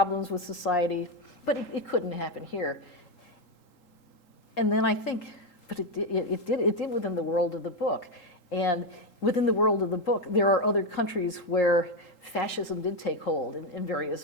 with society, but it couldn't happen here. And then I think, but it did within the world of the book. And within the world of the book, there are other countries where fascism did take hold in various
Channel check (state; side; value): late; right; 3.8 ms